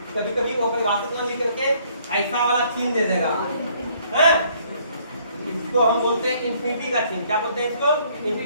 कभी कभी वो परिभाषित ना लिख करके ऐसा वाला चिन्ह दे देगा, हैं? इसको हम बोलते हैं इंफिनिटी का चिन्ह। क्या बोलते हैं इसको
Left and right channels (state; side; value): inverted; both; correlation -0.63